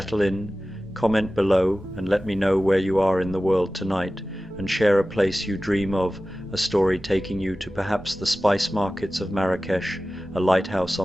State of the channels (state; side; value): normal; both; correlation 0.96